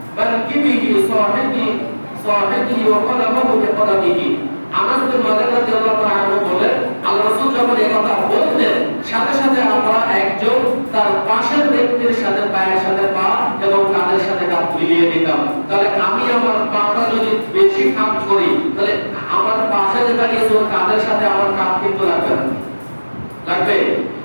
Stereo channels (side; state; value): both; inverted; correlation -1.00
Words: বানকিবিহি সাহিবিহি ওয়া কলামাহু বিকলামিহি। আনাস বিন মালিক রাদিয়াল্লাহু তাআলা আনহু বলেন আল্লাহ রাসূল যখন এই কথা বলতেন সাথে সাথে আমরা একজন তার পাশের ব্যক্তির সাথে পায়ের সাথে পা এবং কাঁধের সাথে কাঁধ মিলিয়ে দিতাম। তাহলে আমি আমার পাটা যদি বেশি কাঁধ করি তাহলে আমার পাশে যে দাঁড়িয়েছে ওর কাঁধের সাথে আমার কাঁধ কিন্তু লাগবে না, লাগবে।